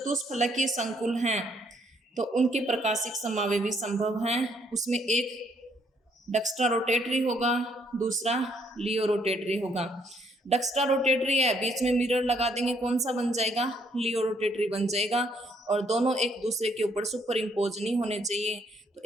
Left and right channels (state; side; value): normal; both; correlation 0.69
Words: संकुल हैं तो उनके प्रकाशिक समावयव भी संभव हैं। उसमें एक डक्स्ट्रा रोटेटरी होगा, दूसरा लियो रोटेटरी होगा। डक्स्ट्रा रोटेटरी है, बीच में मिरर लगा देंगे, कौन सा बन जाएगा, लियो रोटेटरी बन जाएगा। और दोनों एक दूसरे के ऊपर सुपर इम्पोज नहीं होने चाहिए, तो